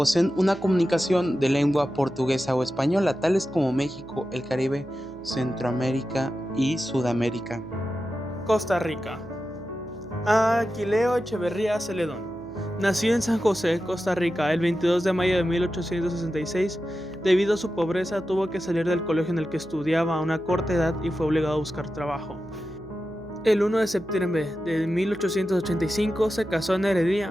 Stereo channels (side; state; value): right; noise; hum, 19 dB below the sound